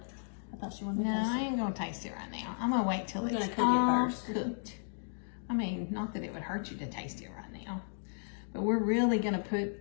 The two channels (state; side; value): silent; right; 55 dB below the other